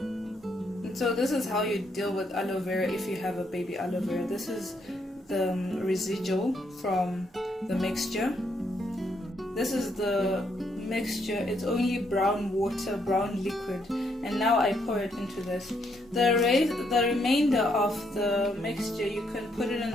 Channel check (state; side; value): normal; both; correlation 0.74